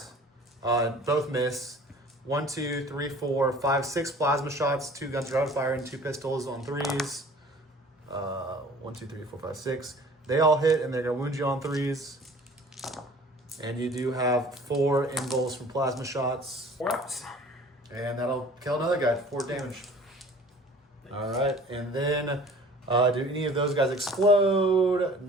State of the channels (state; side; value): normal; both; correlation 0.48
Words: Both miss. 1, 2, 3, 4, 5, 6 plasma shots, 2 guns are firing, 2 pistols on 3s. 1, 2, 3, 4, 5, 6. They all hit, and they're gonna wound you on 3s. And you do have 4 invuls from plasma shots. 4 ups. And that'll kill another guy, 4 damage. All right, and then do any of those guys explode?